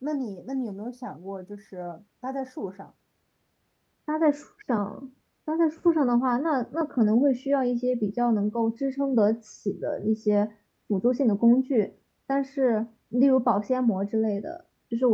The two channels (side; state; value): both; identical; correlation 1.00